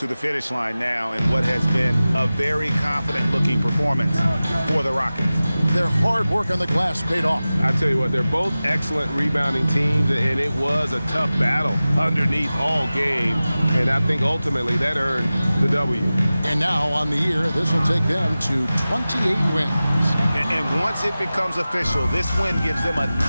the finish line now in what has been a very confident-looking performance for the Rockets. Their hard work on the glass paid off. I tell you what, they're both excellent rebounding teams, and it was a tough battle underneath all game, and I think ultimately that earned the W. And now on the year, this will take them to 28 wins. And once it becomes official, this win gives them a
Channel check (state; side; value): inverted; both; correlation -0.96